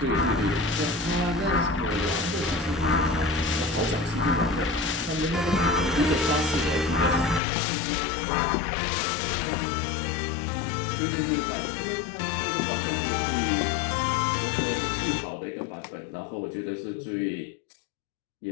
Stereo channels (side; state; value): right; drops out; at 7.4 s